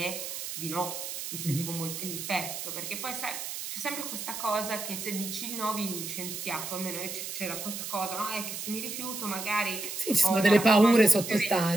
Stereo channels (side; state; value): right; noise; hiss, 6 dB below the sound